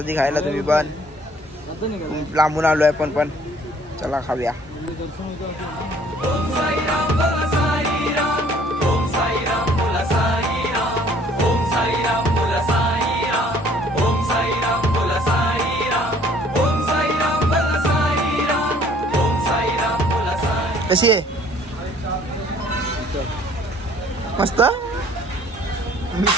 खायला तुम्ही पण. लांबून आलोय पण चला खाऊया. ओम साईराम बोला साईराम, ओम साईराम बोला साईराम, ओम साईराम बोला साईराम, ओम साईराम बोला साईराम, ओम साईराम बोला साईराम, ओम साईराम बोला साईराम. कशी आहे? मस्त.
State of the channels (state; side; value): normal; both; correlation 0.57